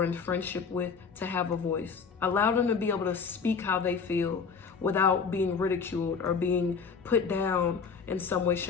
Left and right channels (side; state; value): right; quieter; 5.6 dB